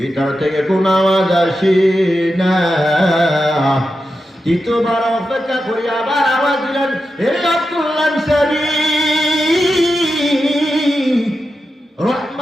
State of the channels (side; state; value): both; normal; correlation 0.89